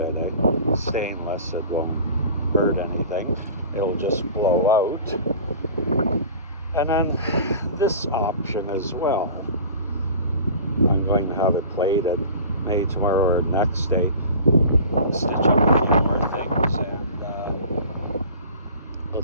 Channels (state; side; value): inverted; both; correlation -0.40